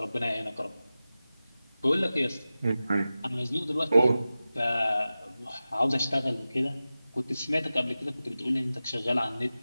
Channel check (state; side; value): inverted; both; correlation -0.95